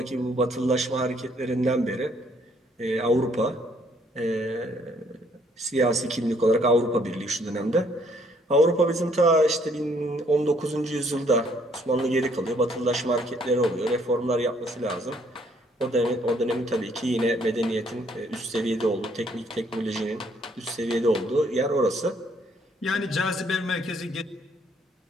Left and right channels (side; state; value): both; normal; correlation 0.66